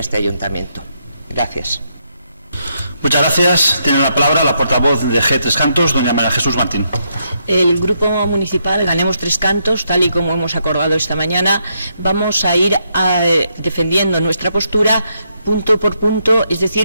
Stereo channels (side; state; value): both; inverted; correlation -0.78